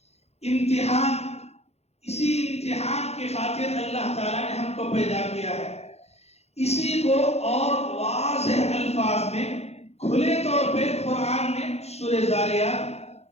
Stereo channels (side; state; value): right; late; 0.31 ms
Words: امتحان۔ اسی امتحان کی خاطر اللہ تعالیٰ نے ہم کو پیدا کیا ہے۔ اسی کو اور واضح الفاظ میں کھلے طور پہ قرآن میں سورہ